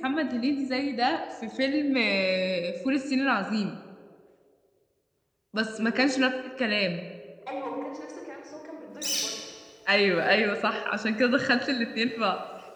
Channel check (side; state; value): both; identical; correlation 1.00